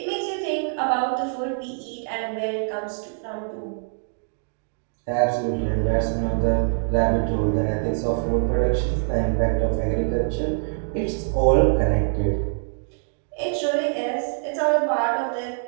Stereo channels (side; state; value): left; silent; digital silence